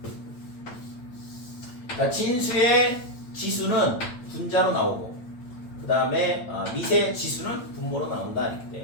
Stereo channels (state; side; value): late; right; 8.9 ms